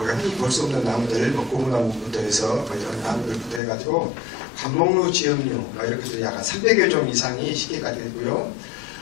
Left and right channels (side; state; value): right; drops out; at 3.6 s